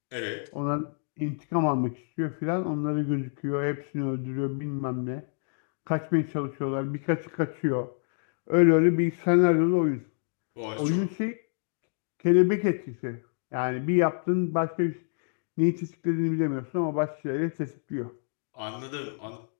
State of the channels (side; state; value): right; silent; digital silence